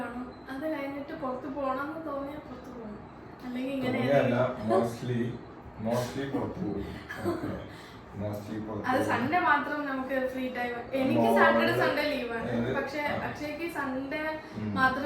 അത് കഴിഞ്ഞിട്ട് പുറത്ത് പോകണമെന്ന് തോന്നിയാൽ പുറത്ത് പോകും, അല്ലെങ്കിൽ ഇങ്ങനെ അത് സൺഡേ മാത്രം നമുക്ക് ഫ്രീ ടൈം. എനിക്ക് സാറ്റർഡേ സൺഡേ ലീവാണ്, പക്ഷെ അക്ഷയ്ക്ക് സൺഡേ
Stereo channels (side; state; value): both; identical; correlation 1.00